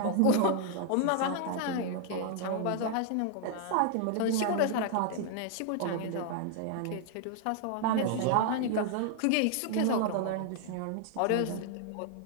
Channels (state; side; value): different; both; correlation 0.00